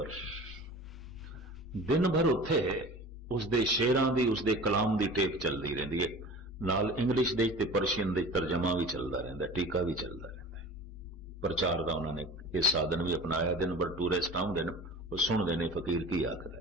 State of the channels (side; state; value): both; normal; correlation 0.39